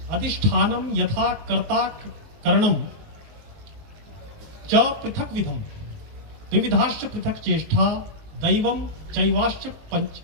अधिष्ठानम यथा कर्ता करणम च पृथक विधम विविधाश्च पृथक चेष्टा दैवम चैवाश्च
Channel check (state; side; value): late; left; 19 ms